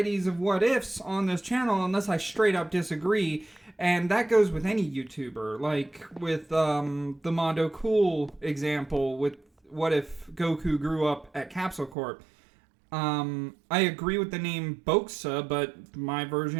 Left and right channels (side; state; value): left; drops out; at 12.0 s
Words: of what-ifs on this channel unless I straight up disagree, and that goes with any YouTuber, like with the Mondo Cool example with what if Goku grew up at Capsule Corp. I agree with the name Bokusa, but my